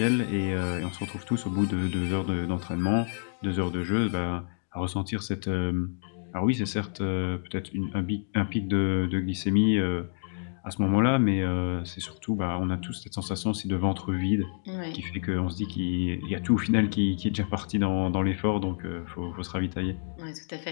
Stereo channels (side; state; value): right; silent; 59 dB below the other